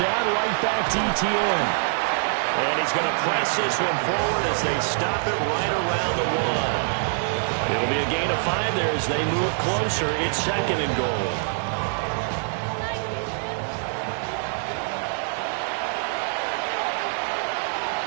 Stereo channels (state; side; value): silent; left; 62 dB below the other